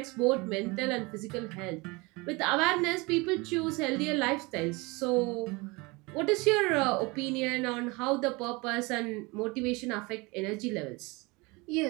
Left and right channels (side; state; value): left; quieter; 25.7 dB